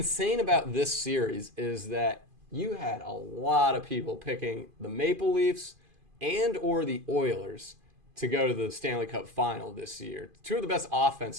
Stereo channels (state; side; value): late; left; 2.5 ms